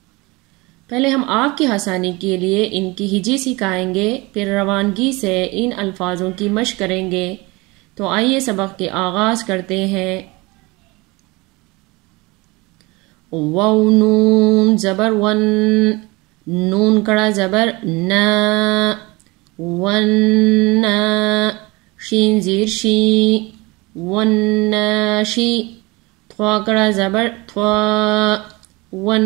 پہلے ہم آپ کی آسانی کے لیے ان کی ہجی سکھائیں گے، پھر روانگی سے ان الفاظوں کی مشق کریں گے، تو آئیے سبق کے آغاز کرتے ہیں۔ واو نون زبر ون، نون کڑا زبر نا، ون نا، شین زیر شی، ون ناشی، تھوا کڑا زبر تھوا، ون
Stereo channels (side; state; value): left; quieter; 24.4 dB